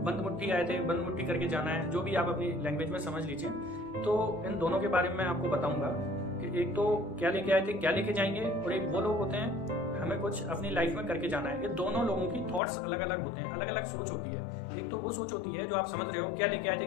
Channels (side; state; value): right; drops out; at 12.6 s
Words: बंद मुट्ठी आए थे बंद मुट्ठी करके जाना है, जो भी आप अपनी लैंग्वेज में समझ लीजिए। तो इन दोनों के बारे में मैं आपको बताऊंगा कि एक तो क्या लेके आए थे क्या लेके जाएंगे, और एक वो लोग होते हैं हमें कुछ अपनी लाइफ में करके जाना है। ये दोनों लोगों की थॉट्स अलग अलग होते हैं, अलग अलग सोच होती है। एक तो वो सोच होती है जो आप समझ रहे हो क्या लेके आए थे